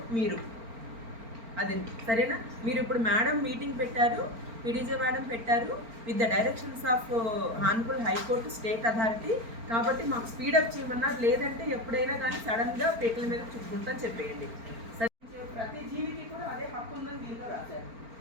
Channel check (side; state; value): left; late; 4.4 ms